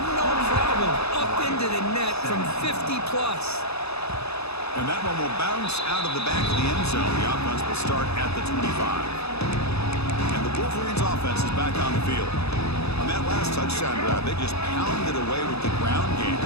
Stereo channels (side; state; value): right; late; 0.79 ms